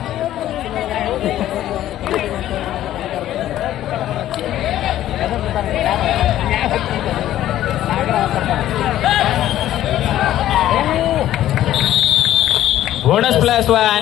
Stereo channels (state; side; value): quieter; right; 12.9 dB